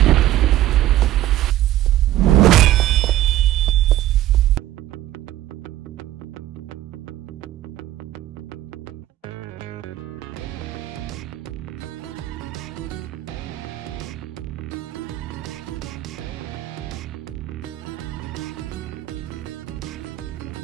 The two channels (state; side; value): quieter; left; 14.0 dB